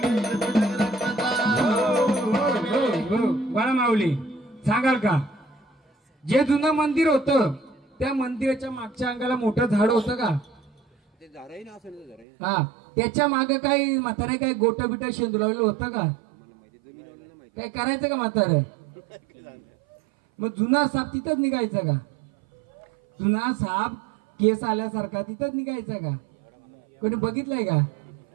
बाळा माऊली सांगाल का, जे जुनं मंदिर होतं त्या मंदिराच्या मागच्या अंगाला मोठं झाड होतं का? हा, त्याच्या मागे काही म्हातारे काय गोट बिट शेंदुलावलेलं होतं का? काय करायचं का म्हातारे? मग जुना साप तिथंच निघायचा का? जुना साप केस आल्यासारखा तिथंच निघायचा का? कोणी बघितलंय का?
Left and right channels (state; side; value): drops out; left; at 12.2 s